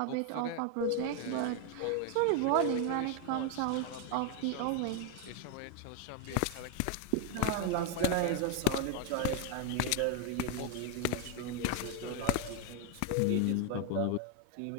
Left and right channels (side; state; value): both; different; correlation 0.01